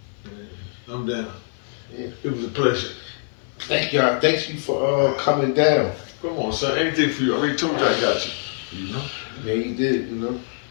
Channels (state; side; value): silent; right; 58 dB below the other